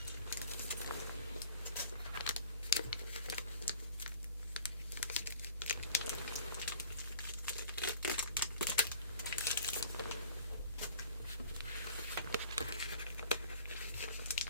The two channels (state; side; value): inverted; both; correlation -0.46